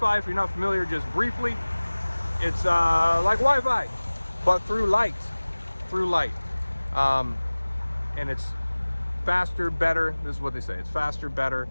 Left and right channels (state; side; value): inverted; both; correlation -1.00